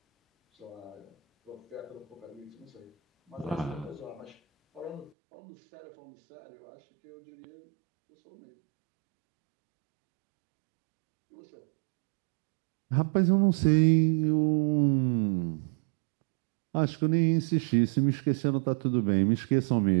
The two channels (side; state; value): left; drops out; at 5.1 s